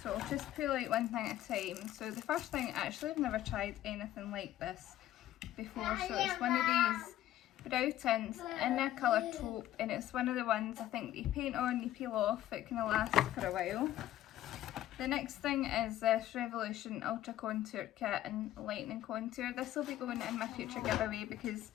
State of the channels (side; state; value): right; quieter; 13.4 dB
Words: So I'll just pull out one thing at a time. So the first thing, actually I've never tried anything like this before, so it's one of these brow tints in a colour taupe, and it's one of the ones I think you paint on, you peel off, it kind of lasts for a while. The next thing is this Revolution Ultra Contour Kit in Lightning Contour. This will be going in my future giveaway because